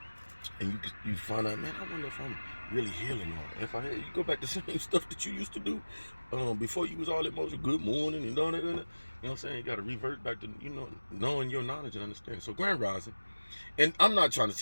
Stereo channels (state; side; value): inverted; both; correlation -1.00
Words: and you find out, man, I wonder if I'm really healing, or if I had, you go back to the same stuff that you used to do, before you was all emotional. Good morning and all that. You know what I'm saying? You got to revert back to knowing your knowledge and understanding. So grand rising, and I'm not trying to